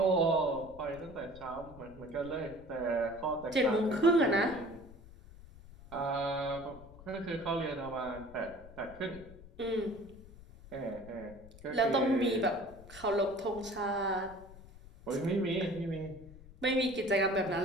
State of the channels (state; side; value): noise; left; rumble, 19 dB below the sound